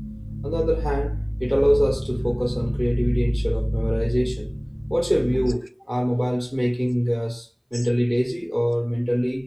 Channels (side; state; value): both; identical; correlation 1.00